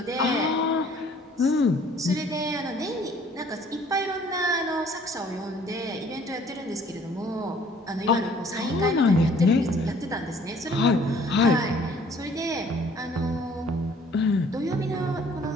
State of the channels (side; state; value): both; normal; correlation 0.57